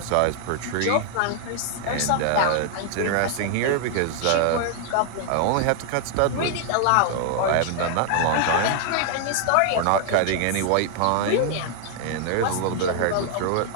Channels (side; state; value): both; different; correlation 0.00